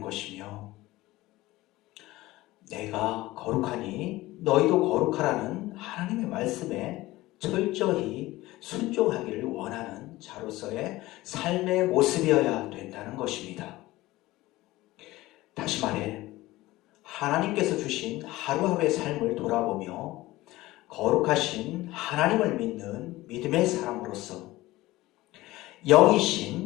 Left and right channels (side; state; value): right; quieter; 18.2 dB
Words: 것이며, 내가 거룩하니 너희도 거룩하라는 하나님의 말씀에 철저히 순종하기를 원하는 자로서의 삶의 모습이어야 된다는 것입니다. 다시 말해 하나님께서 주신 하루하루의 삶을 돌아보며 거룩하신 하나님을 믿는 믿음의 사람으로서